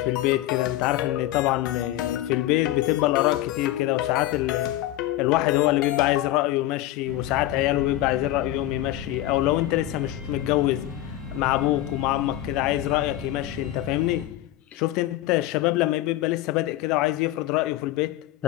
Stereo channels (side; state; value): right; quieter; 14.8 dB